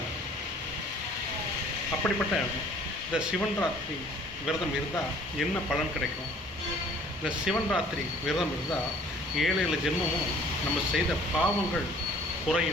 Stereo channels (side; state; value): both; normal; correlation 0.54